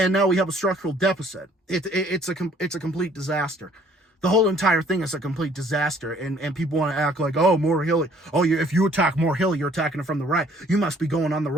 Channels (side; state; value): both; normal; correlation 0.59